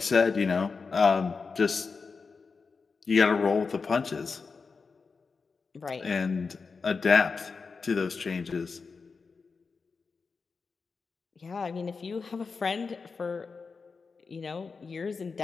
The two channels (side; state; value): right; quieter; 4.8 dB